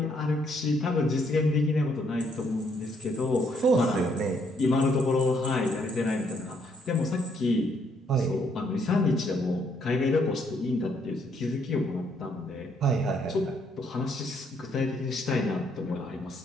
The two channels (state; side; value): normal; both; correlation 0.70